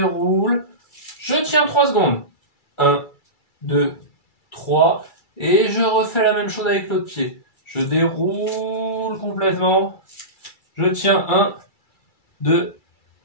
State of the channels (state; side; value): late; right; 2.3 ms